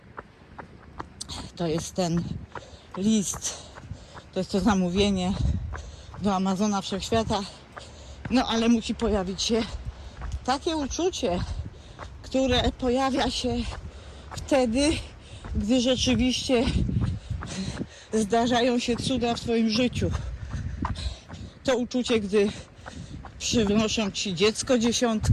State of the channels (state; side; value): identical; both; correlation 1.00